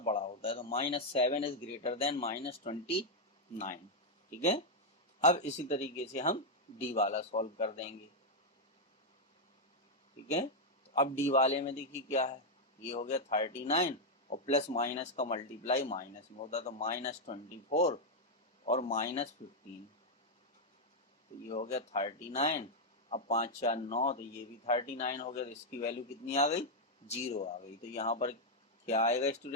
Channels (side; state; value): both; normal; correlation 0.00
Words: बड़ा होता है, तो -7 इज ग्रेटर देन -29, ठीक है। अब इसी तरीके से हम डी वाला सॉल्व कर देंगे, ठीक है। तो अब डी वाले में देखिए क्या है, ये हो गया 39 और प्लस माइनस का मल्टीप्लाई माइनस में होता है, तो -24 और -15, तो ये हो गया 39। अब 5 4 9, तो ये भी 39 हो गया, तो इसकी वैल्यू कितनी आ गई, 0 आ गई। तो यहाँ पर क्या आएगा